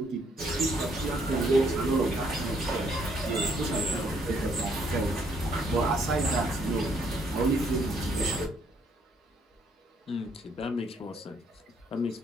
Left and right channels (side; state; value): both; normal; correlation 0.68